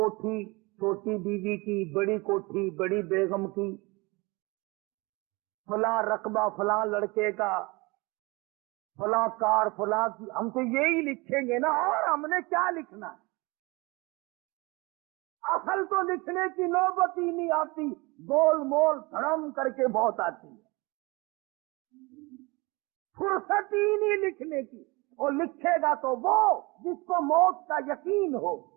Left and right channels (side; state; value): left; quieter; 25.5 dB